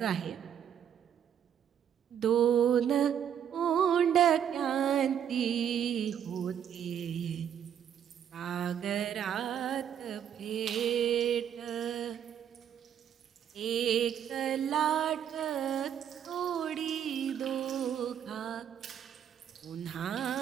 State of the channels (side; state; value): left; quieter; 9.1 dB